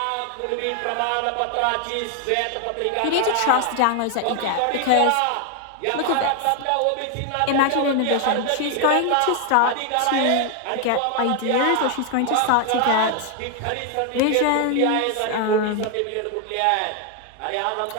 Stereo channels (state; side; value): different; both; correlation 0.00